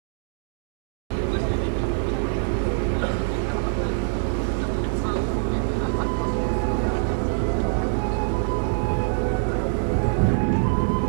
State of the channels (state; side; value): silent; left; digital silence